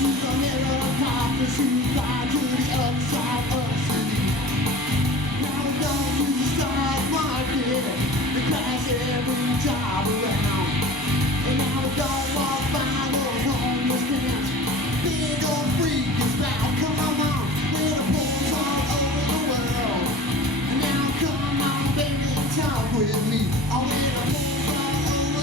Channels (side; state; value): both; normal; correlation 0.39